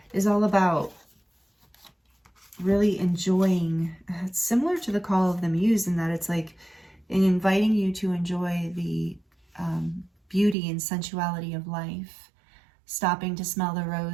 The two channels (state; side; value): drops out; left; at 10.6 s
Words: is all about really enjoying. It's similar to the Call of the Muse in that it's like inviting you to enjoy the beauty and sensuality of life, stopping to smell the